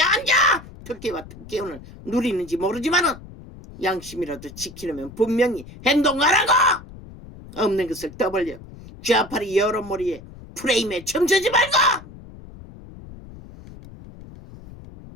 특혜와 특혜원을 누리는지 모르지만은 양심이라도 지키려면 분명히 행동하라고. 없는 것을 떠벌려 좌파리 여러 머리에 프레임에 춤추지 말고!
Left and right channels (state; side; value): noise; left; rumble, 17 dB below the sound